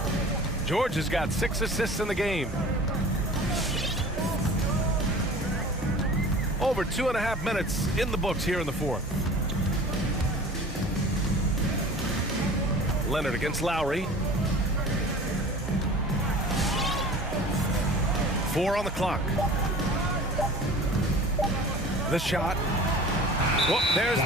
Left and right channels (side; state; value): both; normal; correlation 0.41